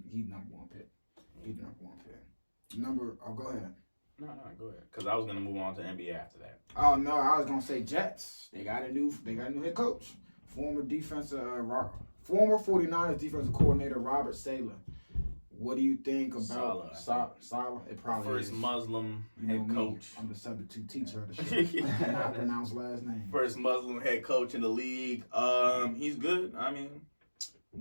number 1 pick. He's number 1 pick. Go ahead. No, go ahead. Because I was gonna move on to NBA after that. Oh no, I was gonna say Jets. They got a new head coach. Former 49ers defensive coordinator Robert Saleh. What do you think about Saleh? It probably first is. Muslim head coach. I'm the substitute teacher of the show. Cannot pronounce last name. First Muslim head coach in the league. He's good. I mean,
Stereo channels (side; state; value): both; inverted; correlation -1.00